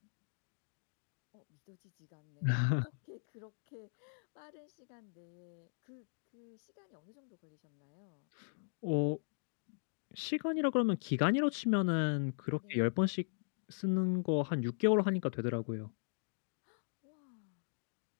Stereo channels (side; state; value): right; silent; digital silence